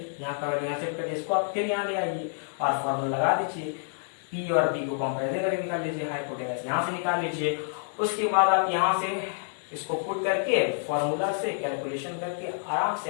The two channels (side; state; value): right; silent; digital silence